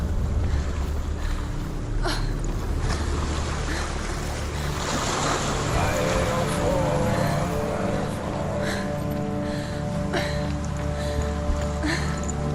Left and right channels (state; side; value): identical; both; correlation 1.00